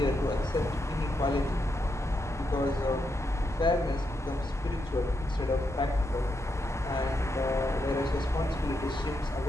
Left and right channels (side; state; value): both; normal; correlation 0.82